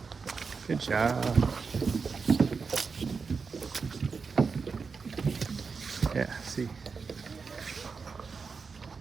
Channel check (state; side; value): quieter; left; 5.1 dB